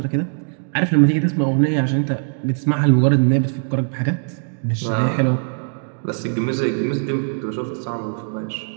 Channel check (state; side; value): silent; left; digital silence